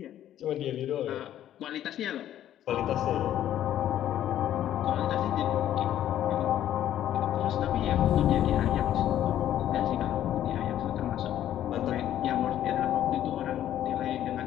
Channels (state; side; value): quieter; right; 11.7 dB